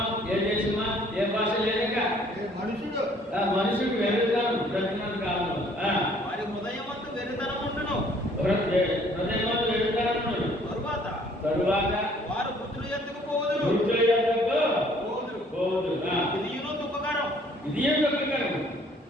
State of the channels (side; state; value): both; normal; correlation 0.59